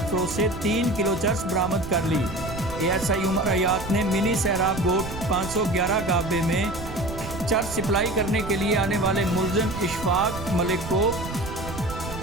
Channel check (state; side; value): noise; right; rumble, 10 dB below the sound